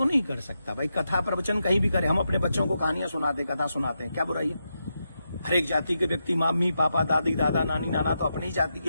नहीं कर सकता भाई? कथा प्रवचन कहीं भी करे। हम अपने बच्चों को कहानियां सुनाते, कथा सुनाते हैं, क्या बुराई है? हर एक जाति के व्यक्ति, मम्मी पापा, दादी दादा, नानी नाना तो अपनी ही जाति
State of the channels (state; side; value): inverted; both; correlation -0.86